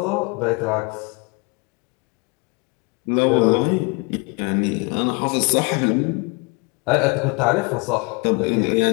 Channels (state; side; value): quieter; right; 30.3 dB